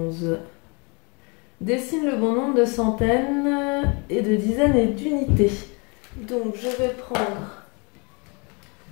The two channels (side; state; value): right; quieter; 31.5 dB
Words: Dessine le bon nombre de centaines et de dizaines et d'unités. Donc je vais prendre